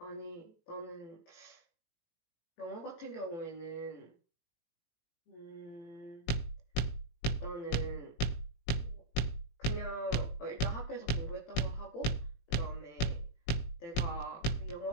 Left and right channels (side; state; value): right; late; 18 ms